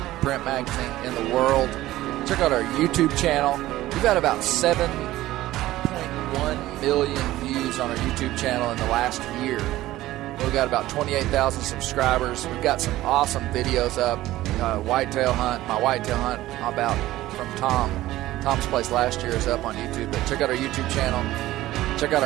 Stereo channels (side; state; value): left; quieter; 15.9 dB